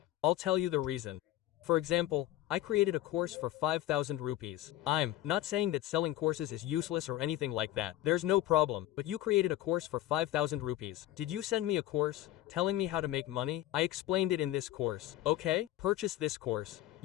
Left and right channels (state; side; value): quieter; right; 14.4 dB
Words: I'll tell you the reason. For example, I created a course for 5,000 rupees. I'm not saying that selling courses is useless or anything like that. There's no problem, but you created a course for 5,000 rupees. Did you send me a course telling me how to make money? I explained it in this course. Okay, purchase this course.